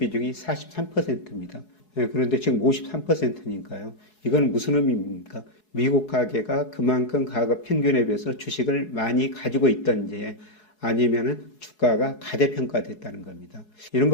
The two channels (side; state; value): right; late; 4.7 ms